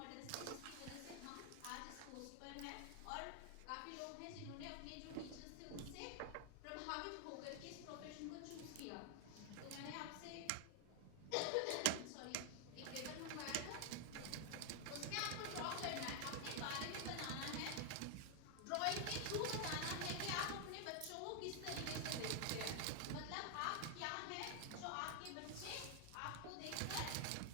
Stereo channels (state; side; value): different; both; correlation 0.00